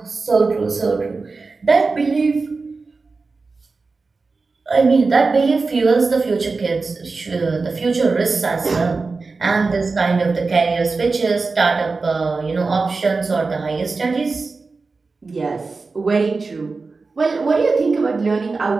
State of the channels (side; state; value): left; quieter; 4.1 dB